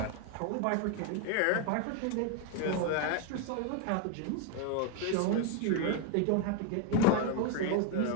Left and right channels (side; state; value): both; different; correlation 0.01